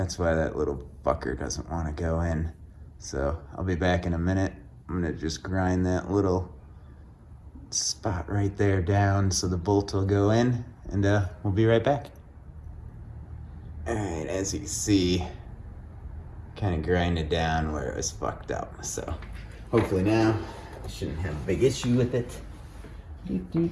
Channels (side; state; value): both; identical; correlation 1.00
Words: why that little fucker doesn't want to go in. So, I'll be back in a minute. I'm gonna just grind that little spot right there down so the bolt will go in, and we'll be right back. Alright, as you can see, kind of grinded down where it was fucked up. So hopefully now I shouldn't have a big issue with it.